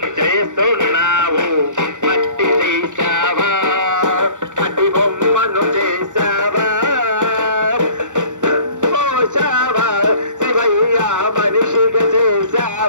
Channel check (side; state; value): left; late; 0.85 ms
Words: మట్టి తీసావా, మట్టి బొమ్మను చేసావా, పోసావా శివయ్య మనిషిగా